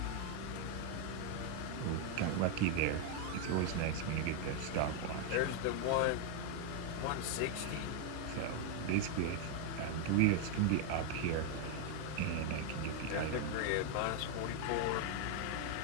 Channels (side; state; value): both; different; correlation 0.00